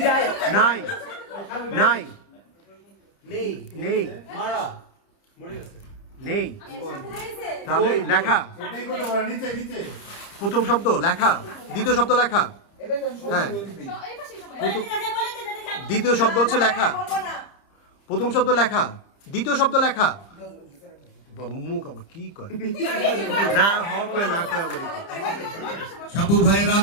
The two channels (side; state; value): right; late; 30 ms